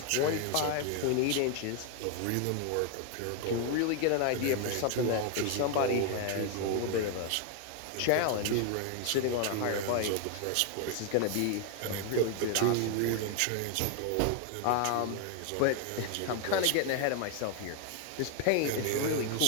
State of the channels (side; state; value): both; different; correlation 0.01